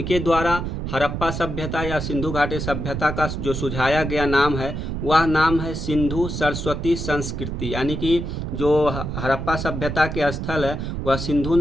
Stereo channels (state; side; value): noise; right; rumble, 4 dB below the sound